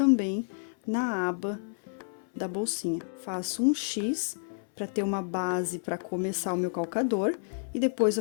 na aba da bolsinha. Faço um X para ter uma base para começar o meu calcador e depois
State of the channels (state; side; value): silent; right; 58 dB below the other